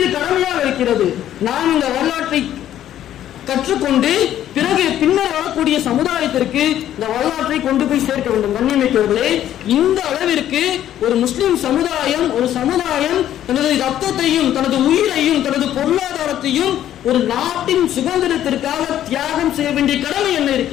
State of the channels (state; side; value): quieter; right; 11.7 dB